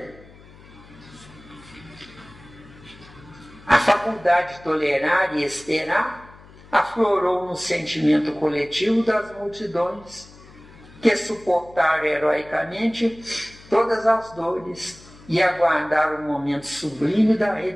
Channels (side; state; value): left; noise; hum, 22 dB below the sound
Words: A faculdade de tolerar e esperar aflorou no sentimento coletivo das multidões que suportaram heroicamente todas as dores e aguardaram o momento sublime da